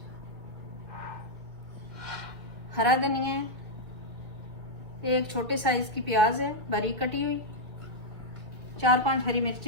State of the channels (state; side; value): late; left; 1.9 ms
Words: हरा धनिया है, एक छोटे साइज की प्याज है बारीक कटी हुई, 4-5 हरी